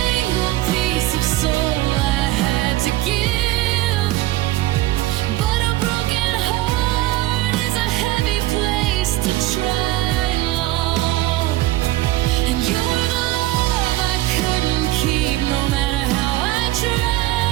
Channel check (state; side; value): quieter; left; 16.9 dB